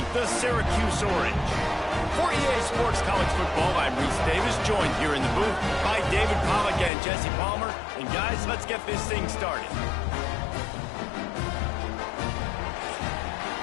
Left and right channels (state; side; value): drops out; right; at 6.9 s